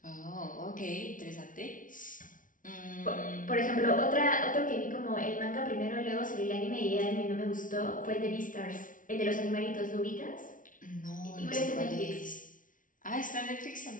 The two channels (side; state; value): right; late; 0.38 ms